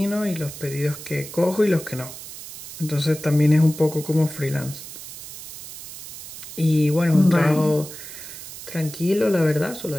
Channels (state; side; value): noise; right; hiss, 13 dB below the sound